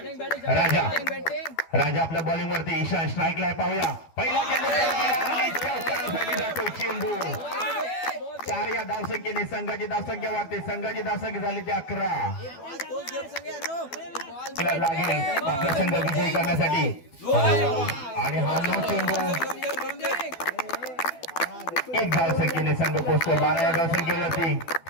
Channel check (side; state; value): right; late; 12 ms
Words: राजा आपल्या बॉलिंग वरती. ईशान स्ट्राईकला आहे. पाहूया. पहिला चेंडू 4 या धावसंख्येने संघाची धावसंख्या वाढते. संघाची धावसंख्या झाली ते 11. लागेल आपला संघ विजयी करण्यासाठी आणि हा नो चेंडू 1 धावसंख्येने संघ पोहोचतो 12 या धावसंख्येवरती.